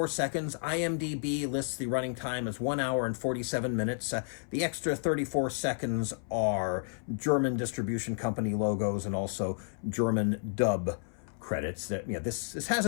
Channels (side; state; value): right; silent; 57 dB below the other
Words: seconds. IMDb lists the running time as 1 hour and 47 minutes. The extra 34 seconds are German distribution company logos and also German dub credits. That this has